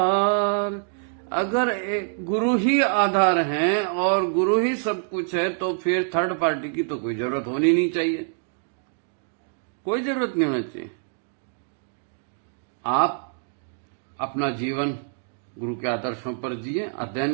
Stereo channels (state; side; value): silent; left; digital silence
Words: अगर एक गुरु ही आधार है और गुरु ही सब कुछ है तो फिर थर्ड पार्टी की तो कोई जरूरत होनी नहीं चाहिए, कोई जरूरत नहीं होना चाहिए। आप अपना जीवन गुरु के आदर्शों पर जिए,